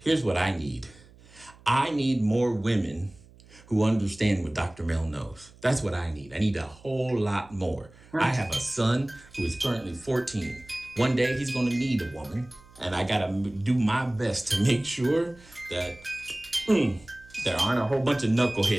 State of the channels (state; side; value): noise; right; hum, 25 dB below the sound